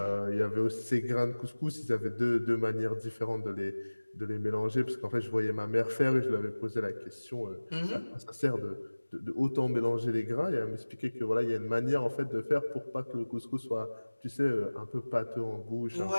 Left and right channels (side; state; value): both; inverted; correlation -1.00